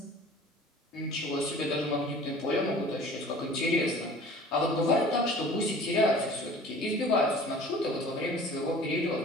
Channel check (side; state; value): both; normal; correlation 0.45